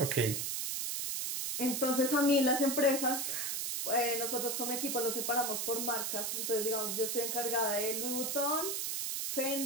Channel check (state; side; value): noise; right; hiss, 1 dB below the sound